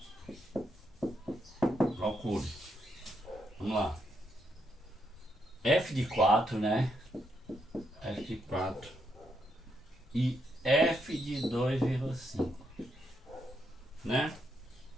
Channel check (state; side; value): normal; both; correlation 0.79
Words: Vamos lá. F de 4, né? F de 4 e F de 2,5, né?